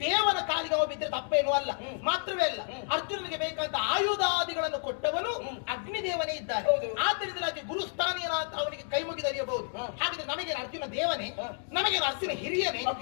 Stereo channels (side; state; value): right; silent; 57 dB below the other